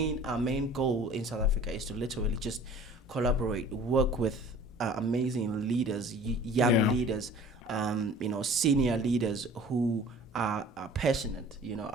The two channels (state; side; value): normal; both; correlation 0.47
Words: goal in South Africa is to literally just collaborate, work with amazing leaders, young Yeah. leaders, senior leaders who are passionate,